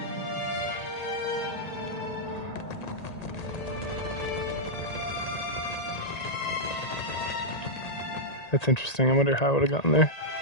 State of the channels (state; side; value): late; right; 1.8 ms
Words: That's interesting. I wonder how I would have gotten there.